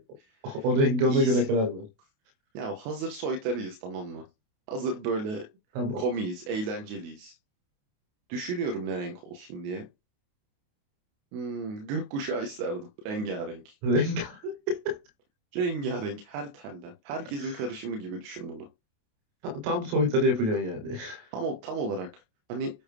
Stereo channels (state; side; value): late; left; 28 ms